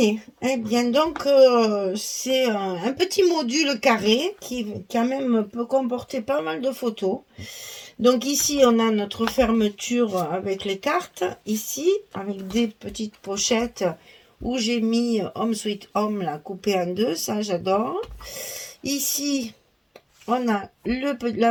Eh bien, donc, c'est un petit module carré qui, quand même, peut comporter pas mal de photos. Donc, ici, on a notre fermeture avec les cartes. Ici, avec des petites pochettes où j'ai mis Home Sweet Home, là, coupé en deux. Ça, j'adore. Ici, on a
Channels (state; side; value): identical; both; correlation 1.00